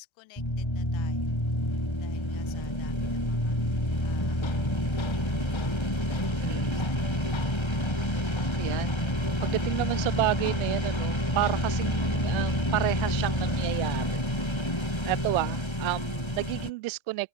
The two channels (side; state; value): right; late; 1.3 ms